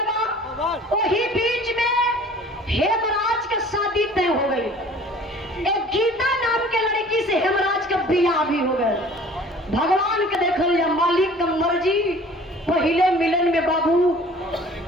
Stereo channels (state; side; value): normal; both; correlation 0.49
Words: बा। वही बीच में हेमराज का शादी तय हो गई। एक गीता नाम के लड़की से हेमराज का बियाह भी हो गया। भगवान के देखल या मालिक का मर्जी, पहले मिलन में बाबू